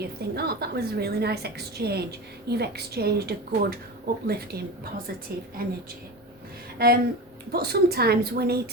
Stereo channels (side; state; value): both; normal; correlation 0.28